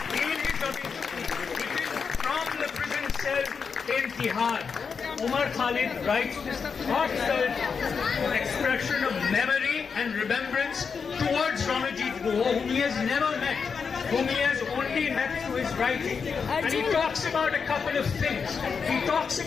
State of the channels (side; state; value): right; quieter; 5.8 dB